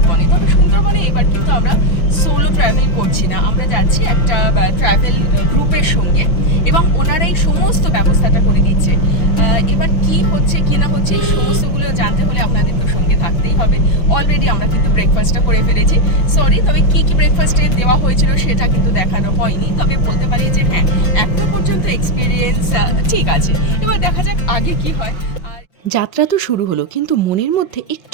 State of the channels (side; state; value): right; late; 5.9 ms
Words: তবে সুন্দরবনে এবার কিন্তু আমরা সোলো ট্রাভেল করছি না, আমরা যাচ্ছি একটা ট্রাভেল গ্রুপের সঙ্গে, এবং ওনারাই সমস্ত ব্যবস্থাটা করে দিচ্ছে। এবার কি হচ্ছে কি না হচ্ছে এই সমস্তগুলো জানতে হলে আপনাদের তো সঙ্গে থাকতেই হবে। অলরেডি আমরা কিন্তু ব্রেকফাস্টটা করে ফেলেছি। সরি, তবে কি ব্রেকফাস্টে দেওয়া হয়েছিল সেটা কিন্তু দেখানো হয়নি। তবে বলতে পারি যে হ্যাঁ, এখনো পর্যন্ত এক্সপিরিয়েন্স ঠিক আছে। এবার দেখা যাক আগে কি হয়। আর যাত্রা তো শুরু হলো, কিন্তু মনের মধ্যে